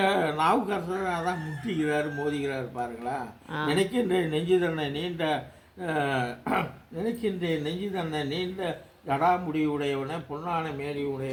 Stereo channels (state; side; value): identical; both; correlation 1.00